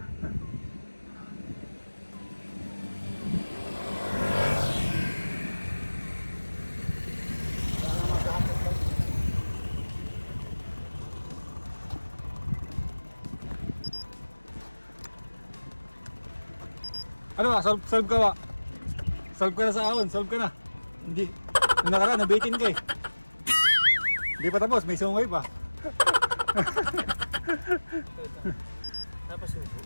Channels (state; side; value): inverted; both; correlation -1.00